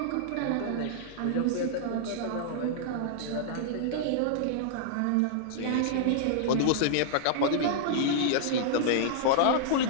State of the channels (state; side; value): different; both; correlation -0.02